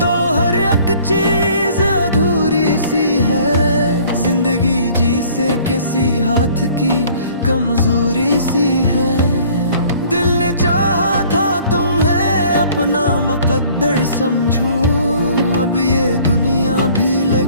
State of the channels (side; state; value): both; inverted; correlation -0.54